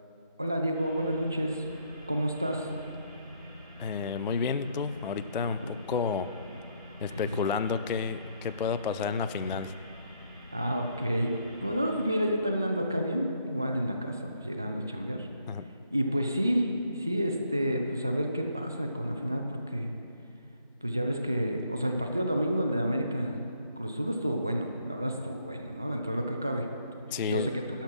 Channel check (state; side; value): inverted; both; correlation -0.71